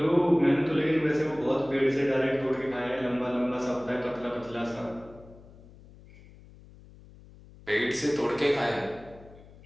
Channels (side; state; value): left; noise; hum, 22 dB below the sound